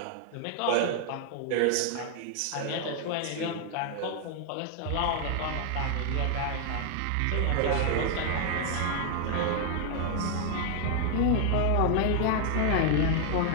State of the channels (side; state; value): both; different; correlation 0.00